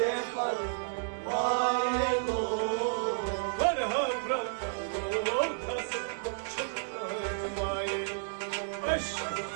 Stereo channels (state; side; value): silent; left; digital silence